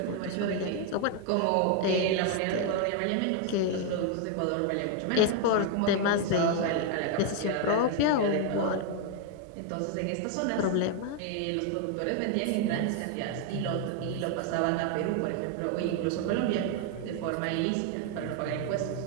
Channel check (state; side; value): different; both; correlation 0.01